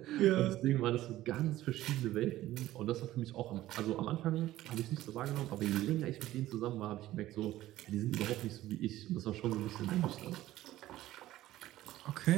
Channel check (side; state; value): left; quieter; 15.1 dB